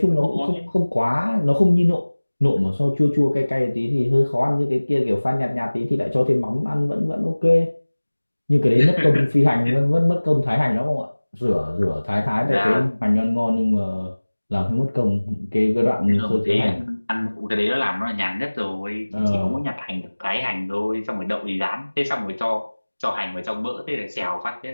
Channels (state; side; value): inverted; both; correlation -1.00